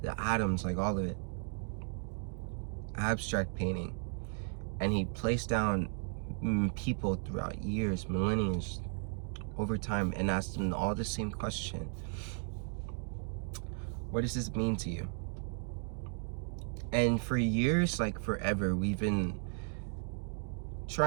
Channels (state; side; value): silent; left; 54 dB below the other